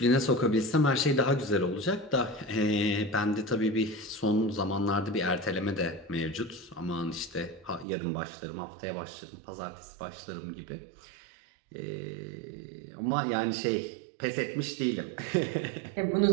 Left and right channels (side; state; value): left; drops out; at 7.9 s